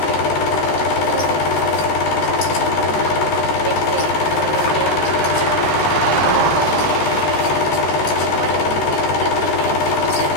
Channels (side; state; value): right; late; 13 ms